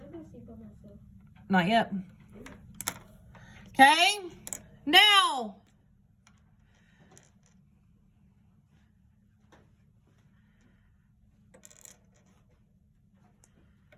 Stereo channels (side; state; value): both; identical; correlation 1.00